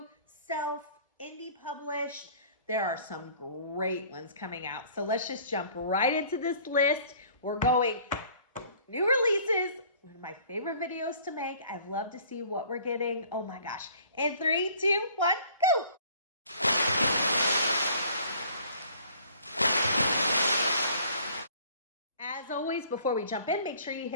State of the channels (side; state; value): both; inverted; correlation -0.54